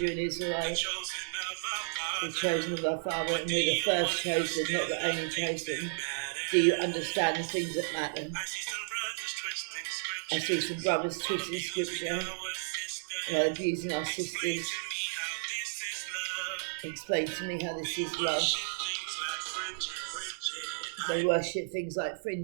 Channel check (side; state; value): left; silent; digital silence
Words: you're an Israelite, the chosen of our Father, and we're the first chosen, not the only chosen. Do you understand the things that matter? I see some brothers twisting scripture, abusing our sisters. Explain to me how this is love. They worship things like